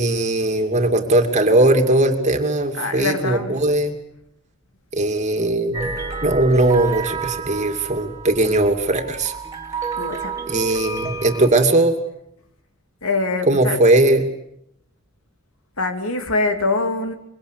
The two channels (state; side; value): normal; both; correlation 0.22